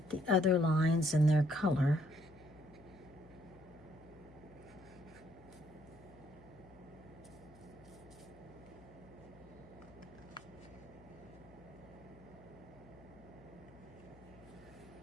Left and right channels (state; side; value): noise; left; hum, 22 dB below the sound